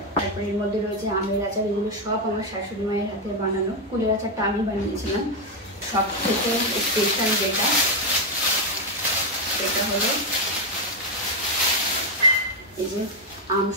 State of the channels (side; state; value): both; normal; correlation 0.04